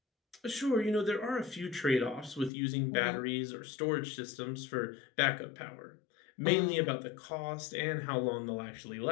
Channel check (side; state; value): right; drops out; at 2.5 s